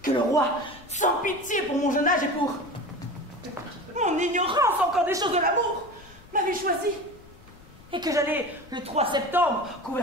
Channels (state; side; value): noise; left; rumble, 23 dB below the sound